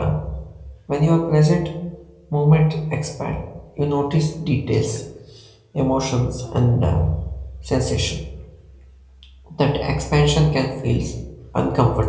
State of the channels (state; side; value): identical; both; correlation 1.00